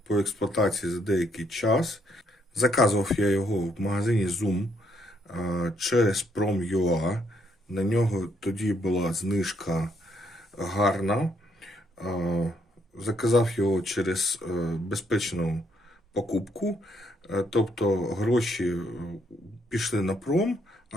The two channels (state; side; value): normal; both; correlation 0.72